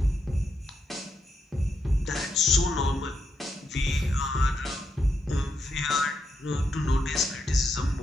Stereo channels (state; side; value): normal; both; correlation 0.81